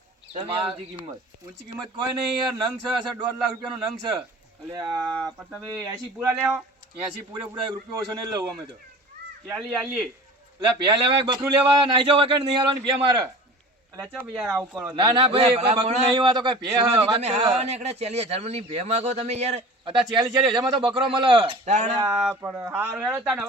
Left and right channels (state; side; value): normal; both; correlation 0.39